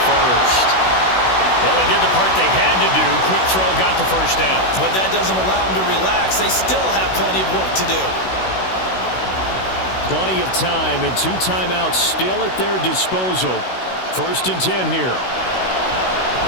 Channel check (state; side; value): late; right; 16 ms